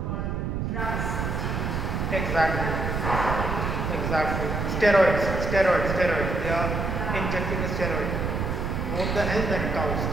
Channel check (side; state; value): right; noise; rumble, 1 dB below the sound